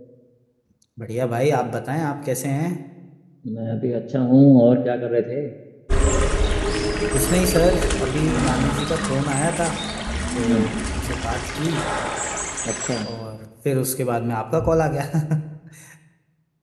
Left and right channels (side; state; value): both; identical; correlation 1.00